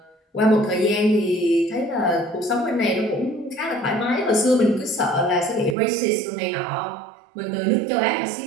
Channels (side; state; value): left; drops out; at 5.8 s